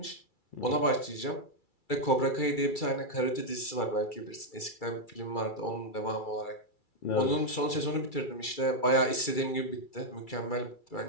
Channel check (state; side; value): late; right; 2.3 ms